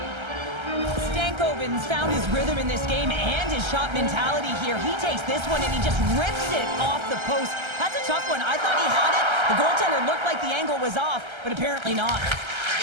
Stankoven's found his rhythm in this game and his shot mentality here. He takes this one and he just rips it off the post. That's a tough one. I thought he had it. The goaltender looked like the angle was off, but apparently not.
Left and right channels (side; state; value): left; late; 1.3 ms